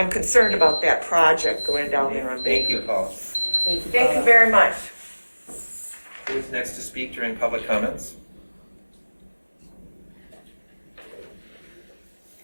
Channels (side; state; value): both; inverted; correlation -1.00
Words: concerned about that project going down there on Thank you, Baker. Paul. Thank you very much. Who's next to speak during public comments?